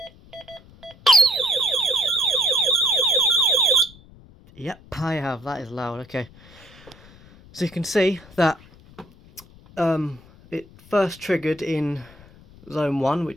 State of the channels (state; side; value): noise; left; rumble, 24 dB below the sound